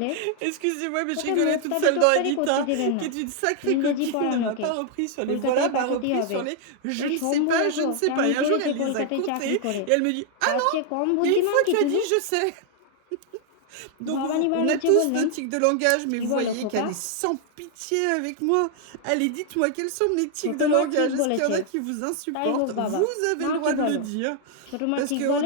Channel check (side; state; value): both; different; correlation 0.00